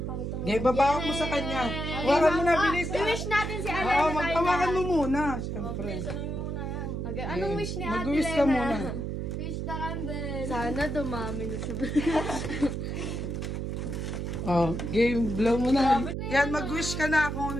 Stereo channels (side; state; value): right; noise; hum, 3 dB below the sound